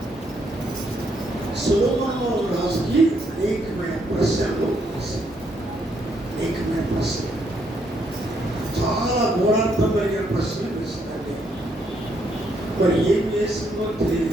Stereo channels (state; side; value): normal; both; correlation 0.74